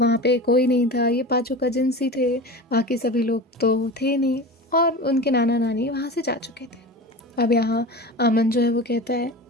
वहाँ पे कोई नहीं था, ये पांचों कजिन्स ही थे, बाकी सभी लोग तो थे नहीं और उनके नाना नानी वहाँ से जा चुके थे। अब यहाँ अमन जो है वो कहता है,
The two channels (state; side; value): normal; both; correlation 0.31